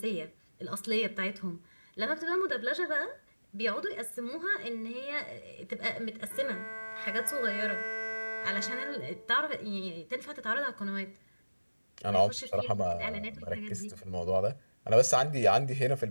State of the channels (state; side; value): inverted; both; correlation -1.00